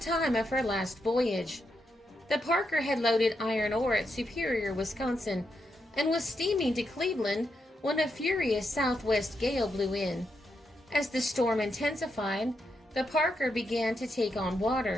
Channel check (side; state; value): both; normal; correlation 0.83